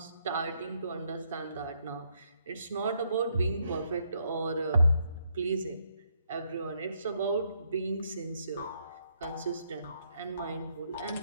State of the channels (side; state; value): both; inverted; correlation -0.74